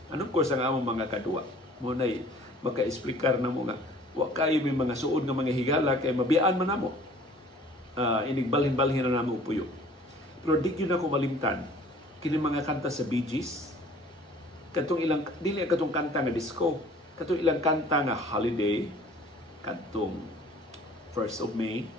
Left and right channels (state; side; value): normal; both; correlation 0.51